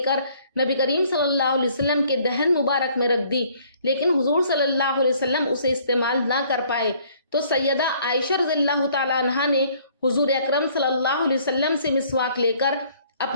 کر نبی کریم صلی اللہ علیہ وسلم کے دہن مبارک میں رکھ دی، لیکن حضور صلی اللہ علیہ وسلم اسے استعمال نہ کر پائے۔ تو سیدہ عائشہ رضی اللہ تعالیٰ عنہ نے حضور اکرم صلی اللہ علیہ وسلم سے مسواک لے کر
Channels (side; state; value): both; inverted; correlation -0.60